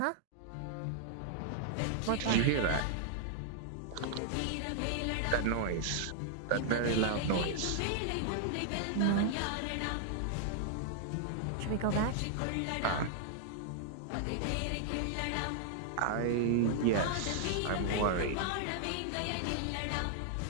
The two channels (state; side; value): different; both; correlation -0.01